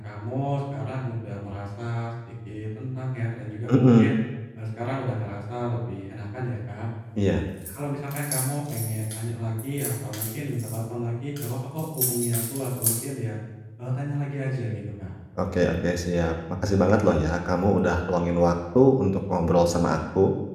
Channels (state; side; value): identical; both; correlation 1.00